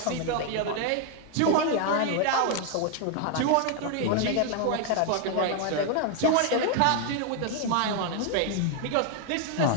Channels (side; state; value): both; different; correlation 0.00